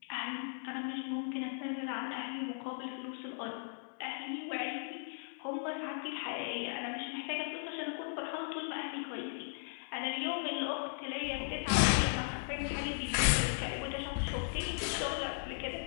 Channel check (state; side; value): silent; right; 53 dB below the other